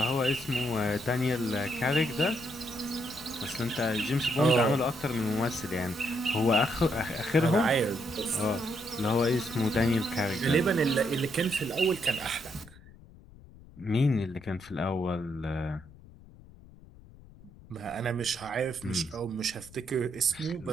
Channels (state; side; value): noise; left; rumble, 22 dB below the sound